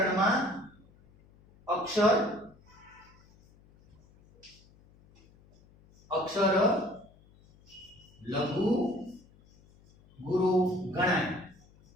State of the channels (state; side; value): noise; left; hum, 28 dB below the sound